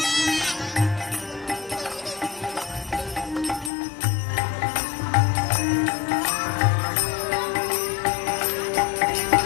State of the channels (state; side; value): drops out; right; at 3.7 s